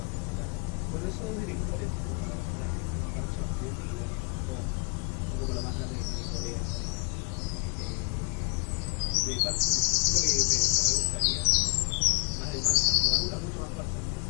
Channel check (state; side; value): quieter; right; 34.4 dB